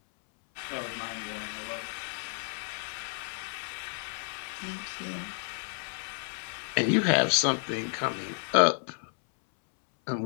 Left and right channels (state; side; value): silent; right; 57 dB below the other